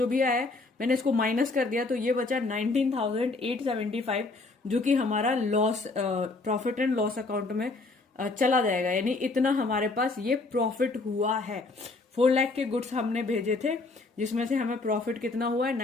भी आया है मैंने इसको माइनस कर दिया, तो ये बचा 19,875 जो कि हमारा loss profit and loss account में चला जाएगा, यानी इतना हमारे पास ये प्रॉफिट हुआ है। 4 लाख के गुड्स हमने भेजे थे जिसमें से हमें प्रॉफिट कितना हुआ है,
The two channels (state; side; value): quieter; right; 3.5 dB